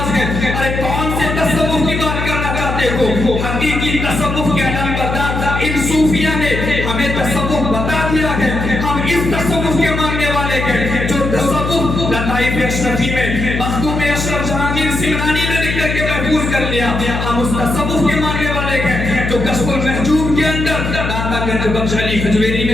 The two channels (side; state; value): left; noise; hum, 3 dB below the sound